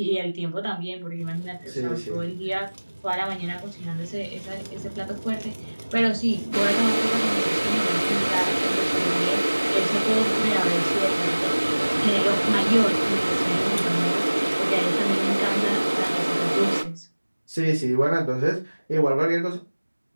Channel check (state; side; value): inverted; both; correlation -1.00